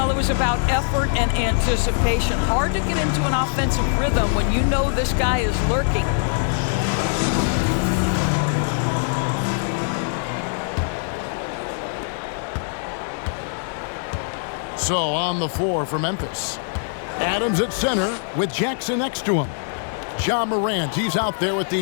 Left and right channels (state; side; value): silent; right; 55 dB below the other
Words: it was about effort and anticipation. Hard to get into an offensive rhythm when you know this guy is lurking. So on the floor for Memphis. Adams at center with Jackson next to him. Ja Morant, he's out there with